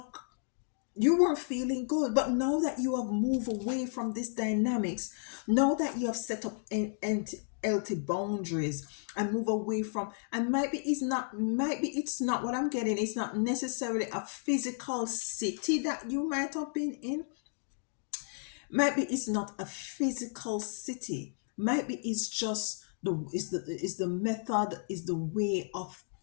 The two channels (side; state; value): right; silent; digital silence